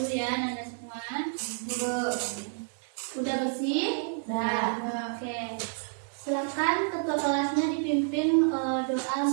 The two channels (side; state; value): left; silent; digital silence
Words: ya, Anda semua. Udah bersih? Udah. Oke, silakan ketua kelasnya dipimpin doa untuk